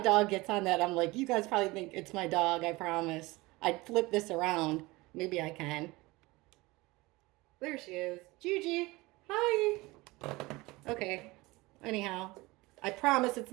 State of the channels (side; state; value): left; quieter; 21.8 dB